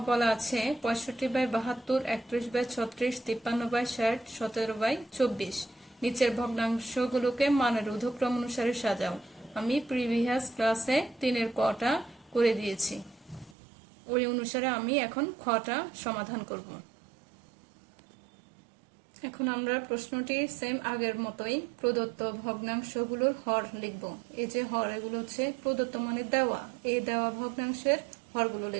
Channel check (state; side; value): drops out; left; at 13.6 s